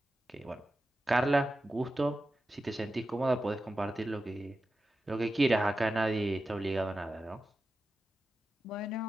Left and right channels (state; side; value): normal; both; correlation 0.92